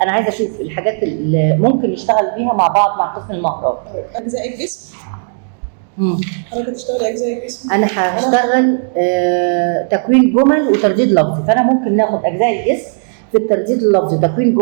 انا عايزه اشوف الحاجات اللي ممكن نشتغل بيها مع بعض مع قسم المهارات. اجزاء الجسم. مم. حضرتك هتشتغلي اجزاء الجسم؟ انا هشتغل تكوين جمل وترديد لفظي، فانا ممكن ناخد اجزاء الجسم في الترديد اللفظي، تكوين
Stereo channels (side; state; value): left; silent; digital silence